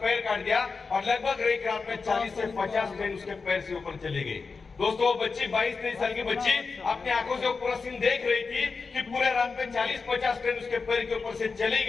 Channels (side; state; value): right; quieter; 4.6 dB